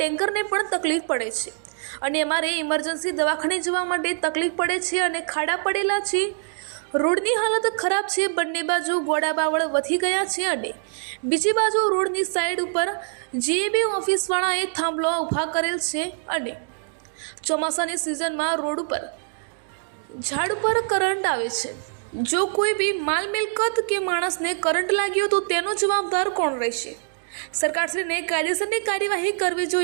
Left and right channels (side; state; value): left; silent; 62 dB below the other